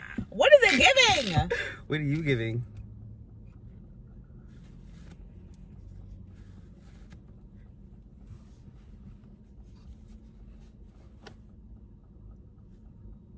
What is it giving? What are you giving?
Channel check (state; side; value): identical; both; correlation 1.00